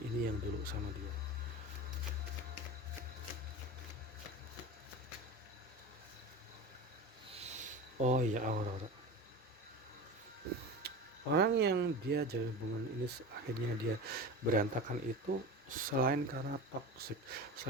ini yang dulu sama dia. Oh iya, Aurora, orang yang dia jalin hubungan ini akhirnya dia berantakan itu selain karena toxic,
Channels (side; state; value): both; normal; correlation 0.29